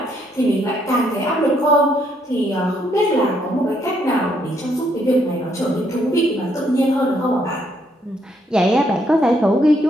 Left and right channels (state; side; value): normal; both; correlation 0.72